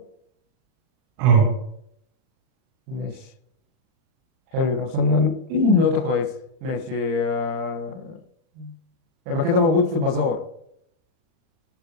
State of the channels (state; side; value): late; left; 38 ms